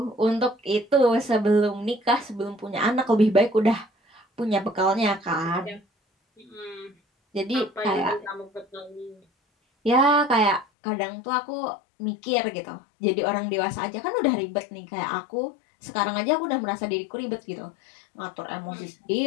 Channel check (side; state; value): right; drops out; at 10.7 s